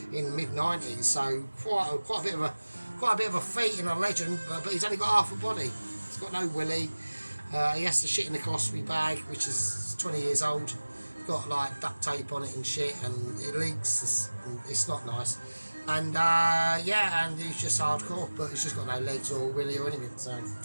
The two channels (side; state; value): both; inverted; correlation -1.00